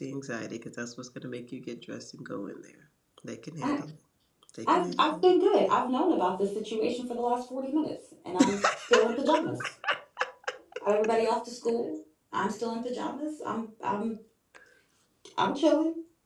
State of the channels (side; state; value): both; identical; correlation 1.00